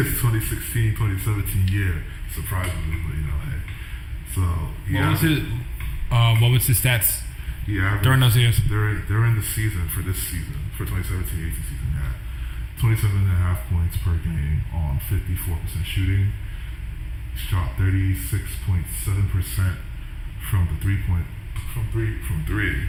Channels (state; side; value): identical; both; correlation 1.00